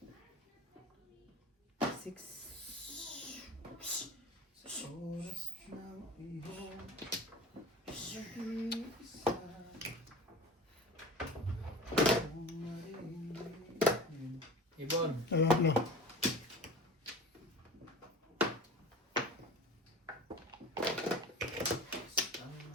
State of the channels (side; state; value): both; normal; correlation 0.36